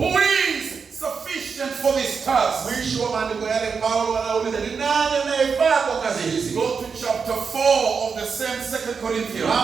is sufficient for this task? Mwisho wa maandiko yale Paulo anauliza ni nani anayefaa kwa kazi hizi? Go to chapter 4 of the same 2 Corinthians.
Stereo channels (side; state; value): left; quieter; 5.6 dB